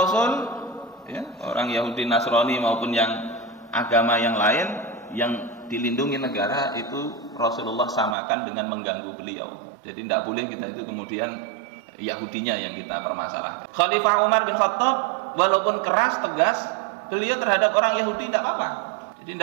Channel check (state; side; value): drops out; left; at 8.2 s